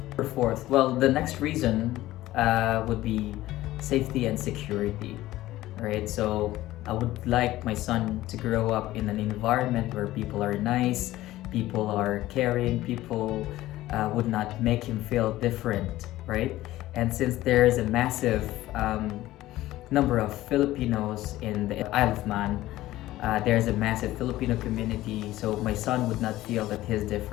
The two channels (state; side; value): quieter; right; 15.9 dB